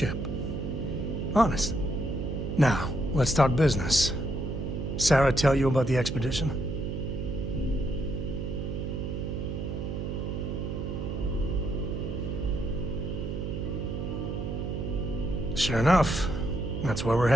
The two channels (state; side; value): noise; right; hum, 3 dB below the sound